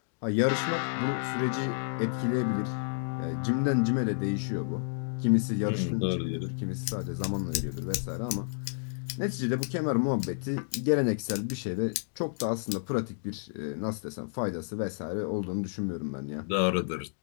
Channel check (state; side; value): silent; right; digital silence